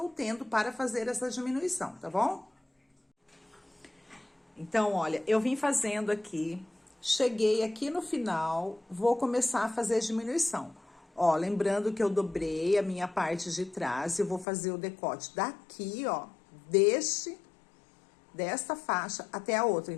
tendo para fazer essa diminuição, tá bom? Então, olha, eu vim fazendo aqui, cheguei aqui no final, vou começar a fazer a diminuição. Ó, lembrando que eu dobrei a minha parte de trás e eu vou fazer o decote daqui, ó, desta faixa até a outra.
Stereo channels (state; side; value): drops out; right; at 14.5 s